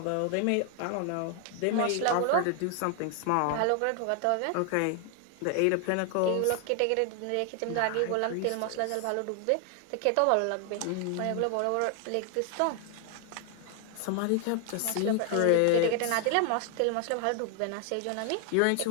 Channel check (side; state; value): both; different; correlation 0.00